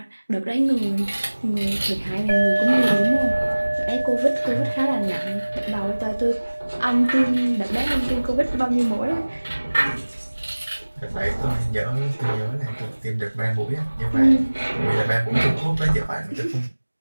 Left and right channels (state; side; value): inverted; both; correlation -1.00